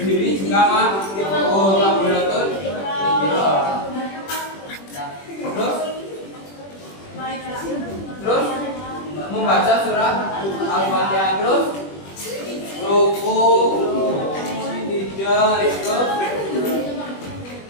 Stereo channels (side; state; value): right; late; 21 ms